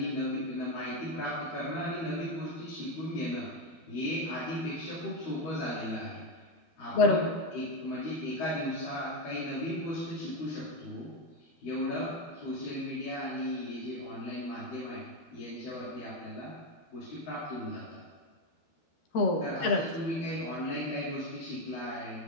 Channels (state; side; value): late; right; 13 ms